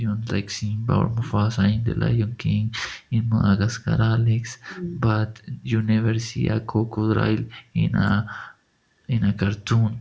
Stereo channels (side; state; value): both; identical; correlation 1.00